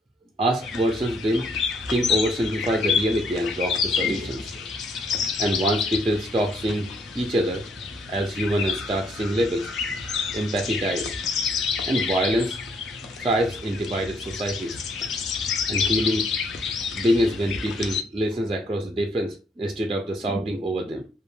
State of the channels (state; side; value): normal; both; correlation 0.68